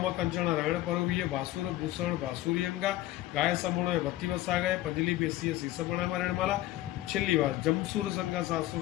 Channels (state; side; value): quieter; right; 15.6 dB